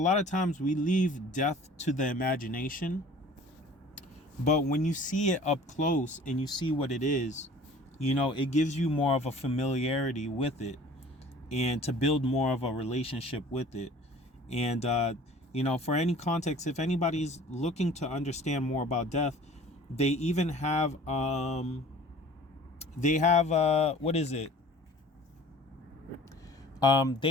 of times we leave death to the imagination, but when you see it up close and you see what it is, it gives you more of a familiarity with it, and to build more of a relationship with it. And for any context, if anybody's looking to understand more about death, they even have what is it? They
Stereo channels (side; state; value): both; normal; correlation 0.47